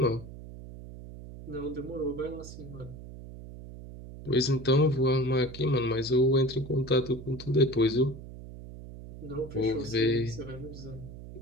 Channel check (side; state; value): right; noise; hum, 14 dB below the sound